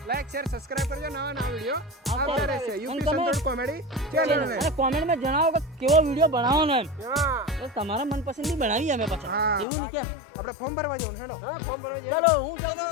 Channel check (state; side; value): drops out; right; at 9.7 s